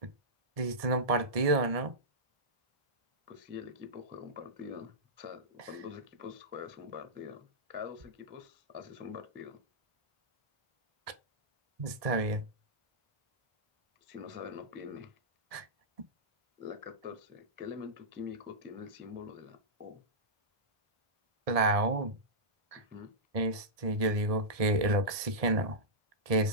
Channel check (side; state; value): left; late; 1.7 ms